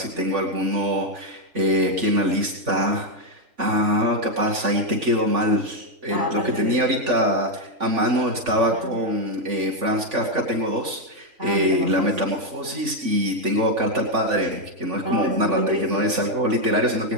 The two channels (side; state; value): left; late; 3.5 ms